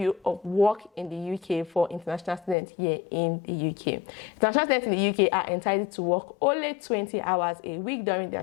of work in the UK for international students here in the UK. International students in the UK are entitled to work only 20 hours a week during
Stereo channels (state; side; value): drops out; right; at 2.6 s